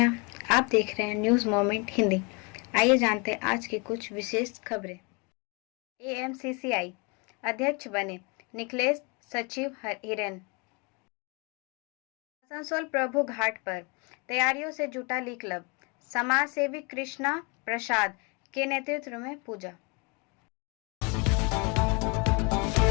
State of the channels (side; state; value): right; quieter; 30.5 dB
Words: आप देख रहे हैं न्यूज मोमेंट हिंदी। आइए जानते हैं आज की कुछ विशेष खबरें। एएमसीसीआई अध्यक्ष बने निखिलेश सचिव हिरेन। आसनसोल प्रभु घाट पर तैयारियों से जुटा ली क्लब। समाज सेवी कृष्णा प्रसाद के नेतृत्व में पूजा।